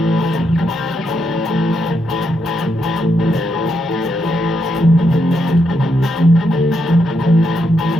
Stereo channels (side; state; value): both; normal; correlation 0.80